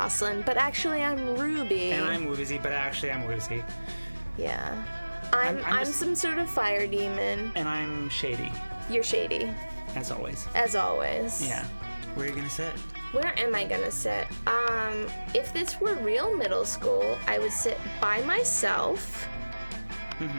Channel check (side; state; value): both; inverted; correlation -1.00